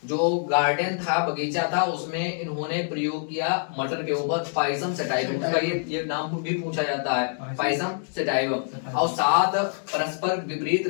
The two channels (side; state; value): right; silent; digital silence